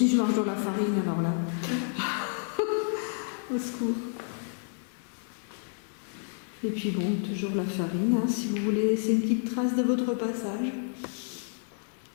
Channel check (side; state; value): right; silent; 58 dB below the other